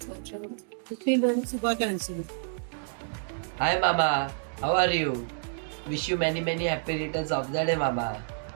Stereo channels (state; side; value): silent; left; digital silence